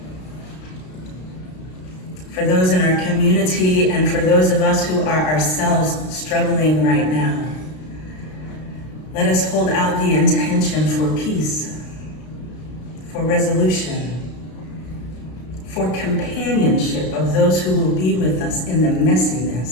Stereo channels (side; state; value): right; late; 32 ms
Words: For those in our community and for those of us who are ourselves struggling right now, let us hold out the intention for peace, for resolution, for companionship of those who will be with us in the